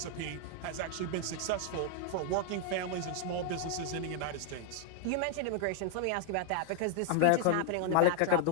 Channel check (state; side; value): different; both; correlation 0.00